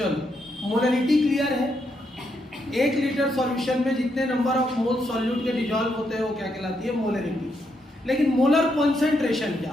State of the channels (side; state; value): both; normal; correlation 0.79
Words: मोलरिटी क्लियर है। 1 लीटर सॉल्यूशन में जितने नंबर ऑफ मोल सॉल्यूट के डिसॉल्व होते हैं वो क्या कहलाती है? मोलरिटी। लेकिन मोलर कॉन्सेंट्रेशन क्या